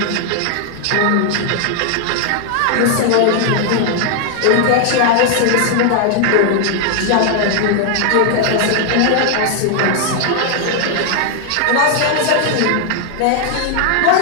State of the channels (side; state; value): both; different; correlation 0.00